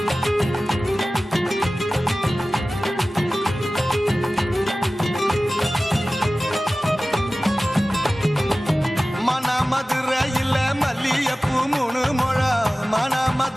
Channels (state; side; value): normal; both; correlation 0.97